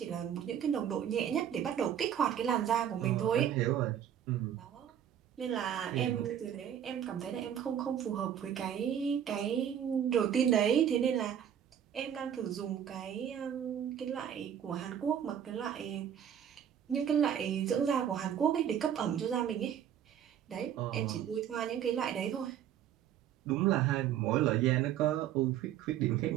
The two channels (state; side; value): quieter; left; 9.5 dB